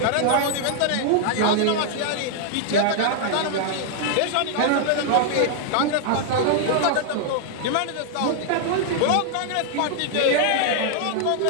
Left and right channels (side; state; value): both; different; correlation 0.00